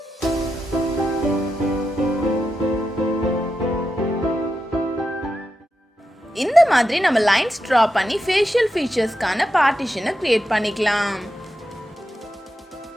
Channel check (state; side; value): normal; both; correlation 0.88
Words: இந்த மாதிரி நம்ம லைன்ஸ் ட்ரா பண்ணி ஃபேஷியல் ஃபீச்சர்ஸ்க்கான பார்ட்டிஷனை கிரியேட் பண்ணிக்கலாம்.